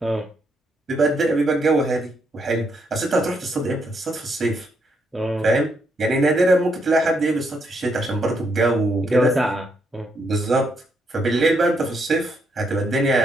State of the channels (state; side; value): normal; both; correlation 0.76